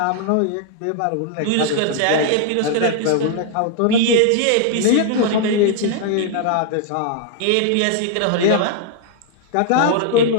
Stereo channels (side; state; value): both; different; correlation 0.00